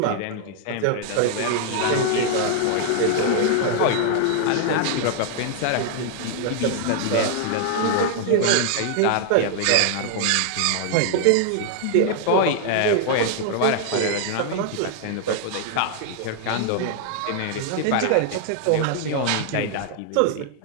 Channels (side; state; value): both; different; correlation 0.00